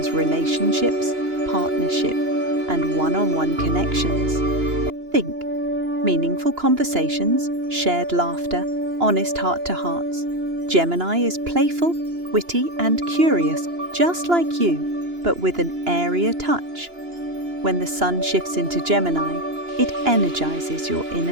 relationships, partnership, and one-on-one connections. Think meaningful conversations, shared laughter, honest heart-to-hearts. Gemini is playful, witty, and curious, just like you, but with an airier touch. When the sun shifts into Gemini, it energizes your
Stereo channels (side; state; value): left; late; 2.9 ms